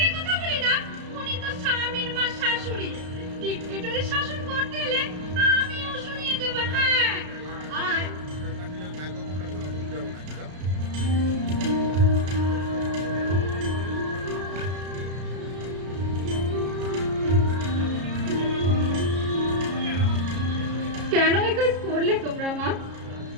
কথা বলি না। উনি তো স্বামীর মা শাশুড়ি। ডিক্টেটরি শাসন করতে এলে আমিও শুনিয়ে দেবো। হ্যাঁ, আয়। কেন এই কাজ করলে তোমরা মা?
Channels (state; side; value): late; left; 33 ms